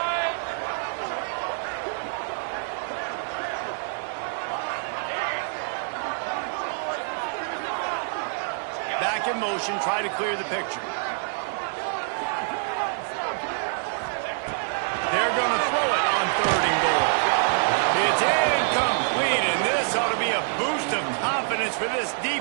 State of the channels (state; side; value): silent; left; digital silence